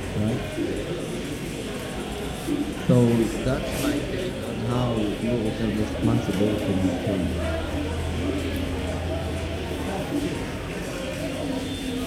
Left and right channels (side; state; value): both; identical; correlation 1.00